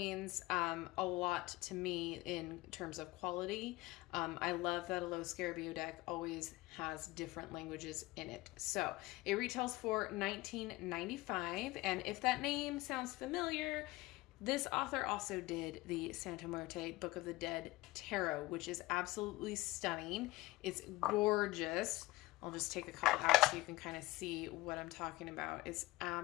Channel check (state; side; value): quieter; right; 20.1 dB